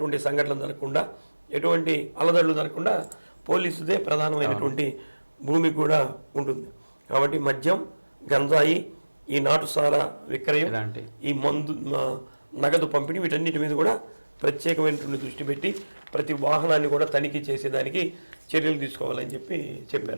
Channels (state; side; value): inverted; both; correlation -1.00